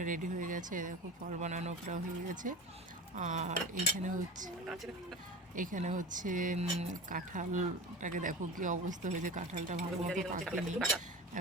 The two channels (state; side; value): normal; both; correlation 0.31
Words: রেডি হয়ে গেছে। দেখো ফল বানানো প্রায় হয়ে গেছে। আর এখানে হচ্ছে কাঁঠালটাকে দেখো কি অবস্থা হয়েছে, কাঁঠালটা ভালো মতো পাকেনি,